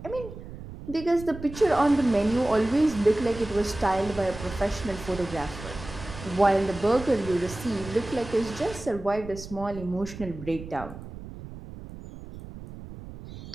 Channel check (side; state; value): right; noise; rumble, 13 dB below the sound